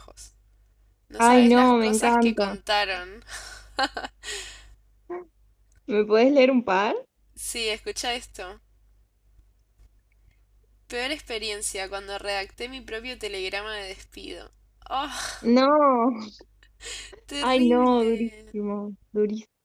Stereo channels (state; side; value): identical; both; correlation 1.00